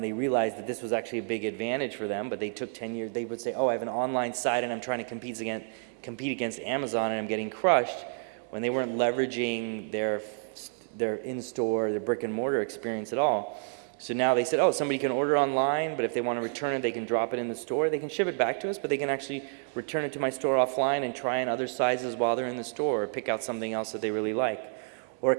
they realized that this was actually a big advantage for them, but they took 10 years. They would say, oh, I have an online site and I'm trying to compete against Amazon and I'm getting crushed, when they weren't leveraging their in-store, their brick and mortar experience at all. So now they said, oh, somebody can order online, but if they want to return it, they can drop it in the store. They can ship it back to us, but they can actually return it to my store offline and try on other sizes while they're in the store, or pick out something else that they really like. Or a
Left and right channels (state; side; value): silent; left; 58 dB below the other